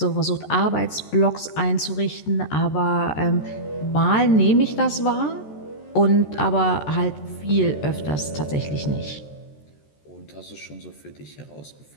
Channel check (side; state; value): right; late; 14 ms